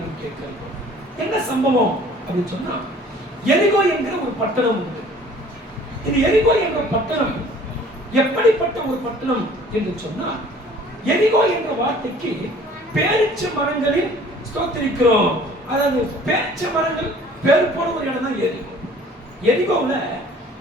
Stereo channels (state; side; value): normal; both; correlation 0.52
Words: நாம் கேட்கிறோம். என்ன சம்பவம் அப்படின்னு சொன்னா, எரிகோ என்கிற ஒரு பட்டணம் உண்டு. இந்த எரிகோ என்ற பட்டணம் எப்படிப்பட்ட ஒரு பட்டணம் என்று சொன்னா, எரிகோ என்ற வார்த்தைக்கு பேரிச்ச மரங்களில் ஸ்தோத்திரிக்கிறோம். அதாவது பேரிச்ச மரங்கள் பேர் போன ஒரு இடம் தான் எரிகோ. எரிகோவுல